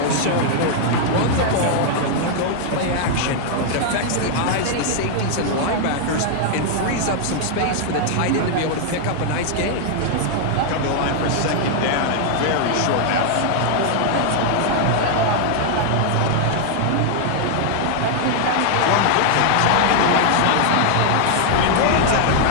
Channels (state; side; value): different; both; correlation 0.00